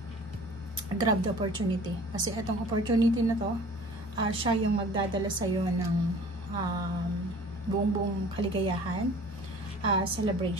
grab the opportunity. Kasi itong opportunity na to, siya yung magdadala sa'yo ng buong kaligayahan,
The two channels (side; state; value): both; normal; correlation 0.47